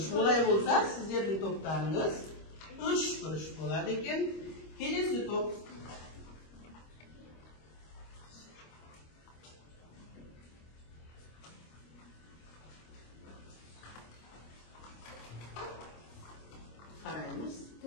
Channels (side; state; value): right; late; 25 ms